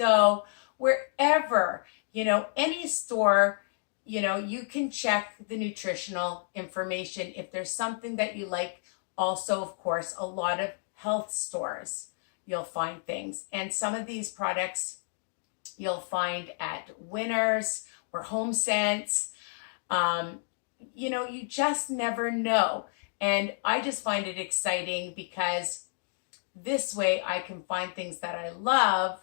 wherever, any store, you can check the nutritional information if there's something that you like. Also, of course, a lot of health stores, you'll find things. And some of these products you'll find at Winners or Home Sense. You just never know. And I just find it exciting because this way I can find things that I love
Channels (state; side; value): silent; right; digital silence